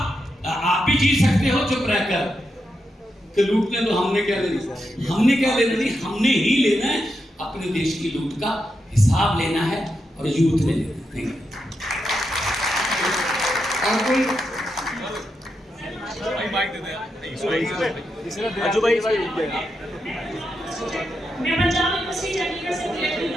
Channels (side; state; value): both; normal; correlation 0.85